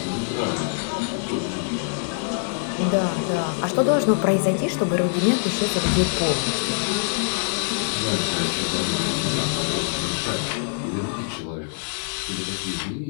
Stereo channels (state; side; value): silent; right; digital silence